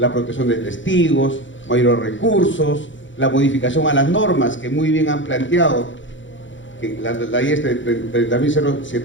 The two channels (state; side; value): late; right; 0.55 ms